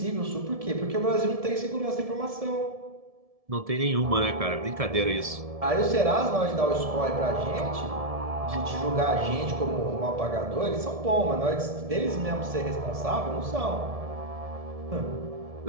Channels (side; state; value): left; late; 1.7 ms